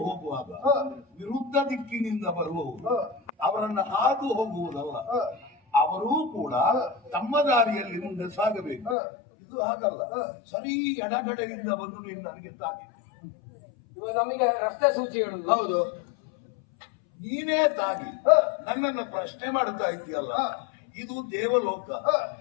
ಹೋಗುವಾಗ ವಿರುದ್ಧ ದಿಕ್ಕಿನಿಂದ ಬರುವವರು ಅವರನ್ನ ಹಾದು ಹೋಗುವುದಲ್ಲ, ಅವರೂ ಕೂಡ ತಮ್ಮ ದಾರಿಯಲ್ಲಿ ಮುಂದೆ ಸಾಗಬೇಕು. ಇದು ಹಾಗಲ್ಲ, ಸರಿ ಎಡಗಡೆಯಿಂದ ಬಂದು ನೀನು ನನಗೆ ತಾಗಿ ಇವಾಗ ನಮಗೆ ರಸ್ತೆ ಸೂಚಿ ಹೇಳುದು. ಹೌದು ನೀನೇ ತಾಗಿ ನನ್ನನ್ನು ಪ್ರಶ್ನೆ ಮಾಡ್ತಾ ಇದೆಯಲ್ಲ. ಇದು ದೇವಲೋಕ.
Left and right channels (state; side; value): drops out; right; at 9.0 s